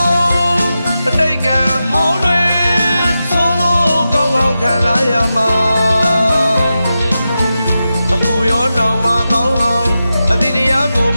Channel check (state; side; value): inverted; both; correlation -0.91